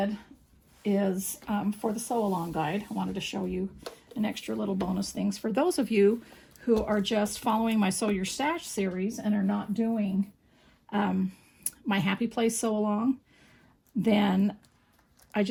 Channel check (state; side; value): identical; both; correlation 1.00